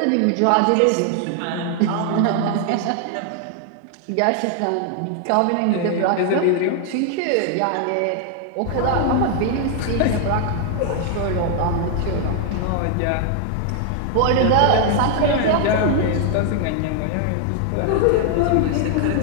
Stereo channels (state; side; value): different; both; correlation 0.00